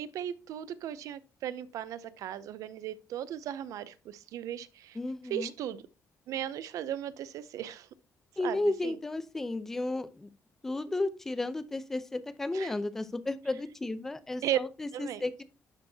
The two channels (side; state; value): both; normal; correlation 0.72